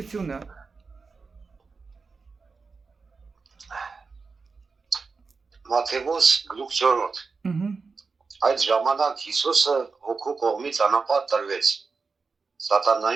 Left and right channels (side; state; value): left; quieter; 4.6 dB